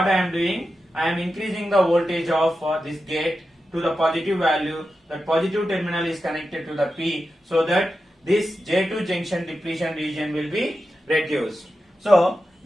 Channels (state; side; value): normal; both; correlation 0.90